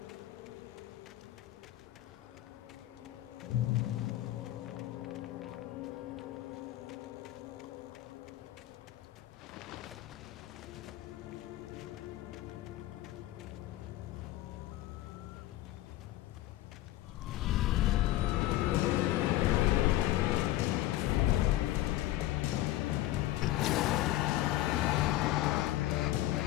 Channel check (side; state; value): right; quieter; 15.5 dB